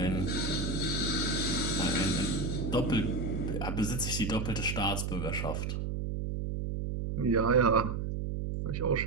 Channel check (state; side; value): noise; right; hum, 2 dB below the sound